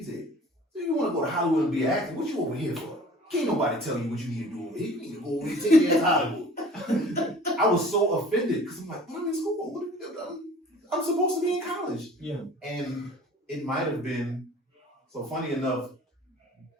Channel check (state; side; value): normal; both; correlation 0.47